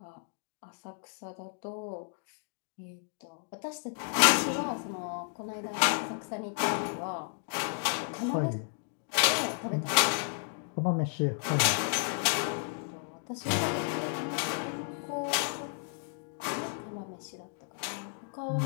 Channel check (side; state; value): right; silent; 56 dB below the other